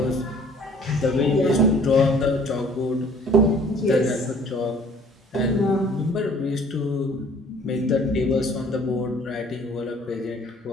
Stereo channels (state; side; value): normal; both; correlation 0.54